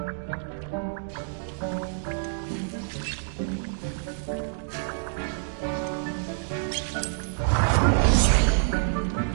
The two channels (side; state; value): left; silent; digital silence